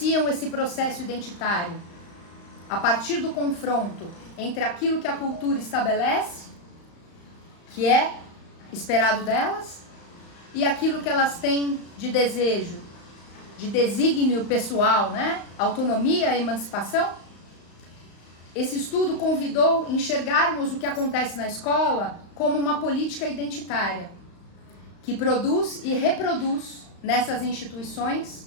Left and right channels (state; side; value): late; right; 35 ms